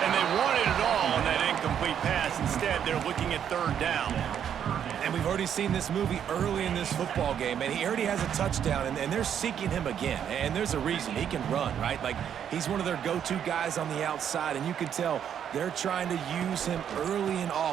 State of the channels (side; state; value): left; quieter; 8.9 dB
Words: And they wanted it all on that incomplete pass. Instead, they're looking at third down. And we've already seen this movie early in this football game, and he already has a touchdown, and they're seeking him again. And there's a reason. He can run, right? Like, he's one of their go-to guys on the outside, and you can tell they're trying to use him early and